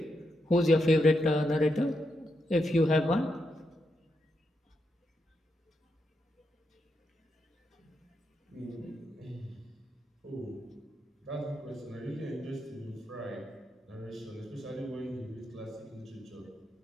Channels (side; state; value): both; normal; correlation 0.83